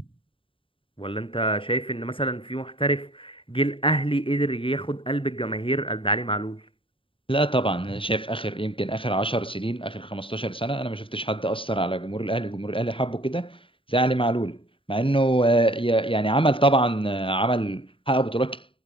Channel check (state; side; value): late; right; 0.25 ms